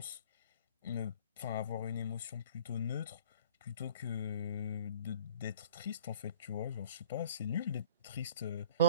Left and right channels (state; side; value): inverted; both; correlation -0.51